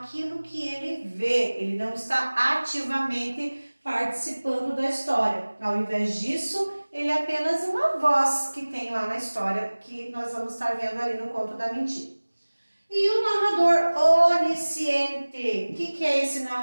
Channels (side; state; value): both; inverted; correlation -1.00